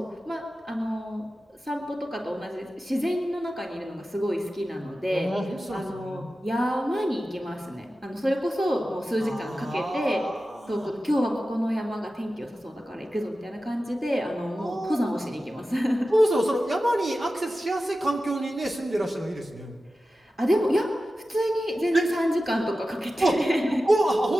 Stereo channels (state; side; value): normal; both; correlation 0.94